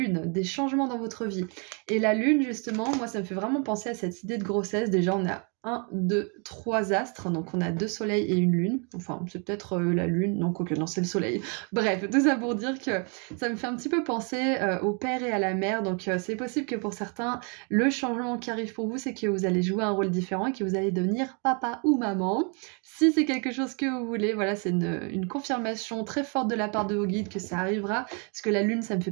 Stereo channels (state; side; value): quieter; left; 36.7 dB